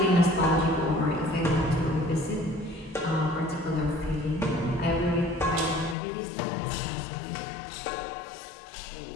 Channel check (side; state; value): right; drops out; at 6.0 s